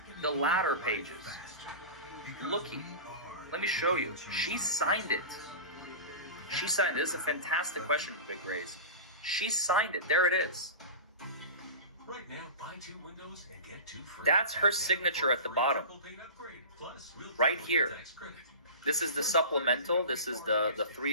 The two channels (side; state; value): both; inverted; correlation -0.31